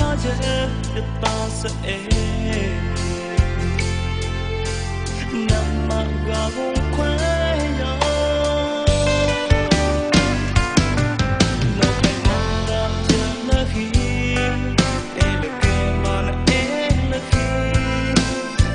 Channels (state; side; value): identical; both; correlation 1.00